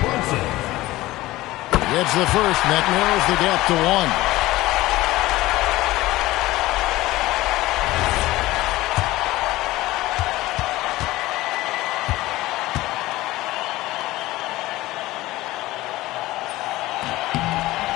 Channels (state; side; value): quieter; right; 17.9 dB